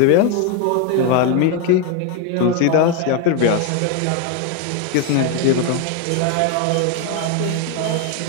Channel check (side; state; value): both; different; correlation 0.01